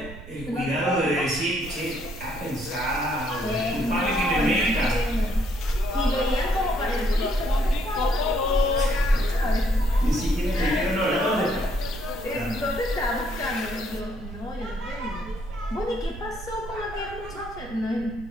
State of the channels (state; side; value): noise; right; rumble, 14 dB below the sound